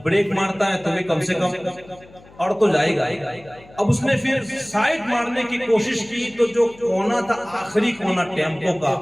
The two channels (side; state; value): left; noise; hum, 24 dB below the sound